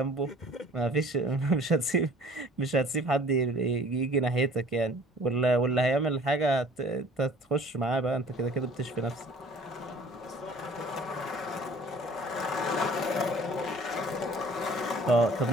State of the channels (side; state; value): both; normal; correlation 0.50